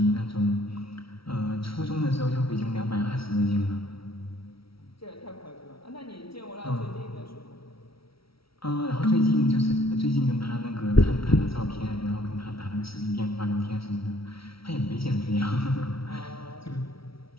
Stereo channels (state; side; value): late; right; 0.75 ms